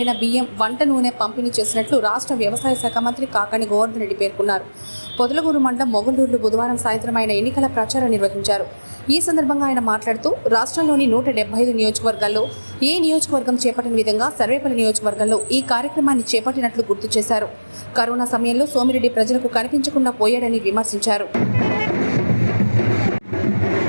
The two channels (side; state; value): both; inverted; correlation -1.00